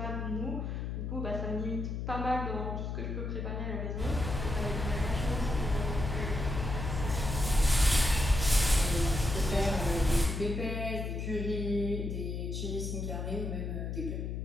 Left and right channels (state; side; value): noise; left; hum, 3 dB below the sound